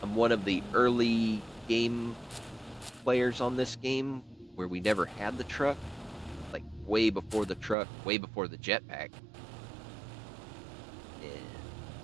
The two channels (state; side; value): drops out; left; at 7.8 s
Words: I'm one of the early game players on this game where we never had the truck. Like way before the truck, way before the jetpack. And